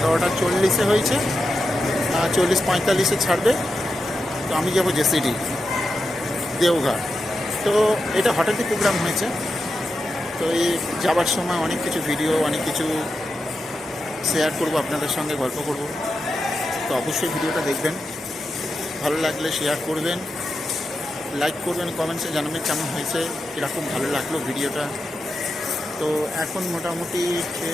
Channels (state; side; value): normal; both; correlation 0.89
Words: 40-এ হয়েছে। 40-45-এ ছাড়বে। তো আমি যাবো জেসিডি দেওঘর। তো এটা হঠাৎই প্রোগ্রাম হয়েছে। তো এই যাবার সময় অনেক কিছু ভিডিও, অনেক কিছু শেয়ার করব আপনাদের সঙ্গে, গল্প করব। তো অবশ্যই ভিডিওটা দেখবেন, ভালো লাগলে শেয়ার করবেন, লাইক করবেন, কমেন্টসে জানাবেন কেমন হয়েছে, কীরকম ভালো লাগলো ভিডিওটা। তো এখন মোটামুটি